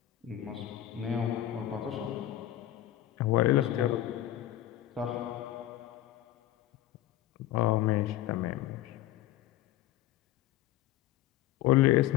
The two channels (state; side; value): quieter; right; 13.6 dB